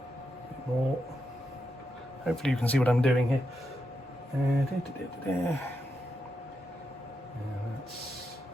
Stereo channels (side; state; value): both; normal; correlation 0.84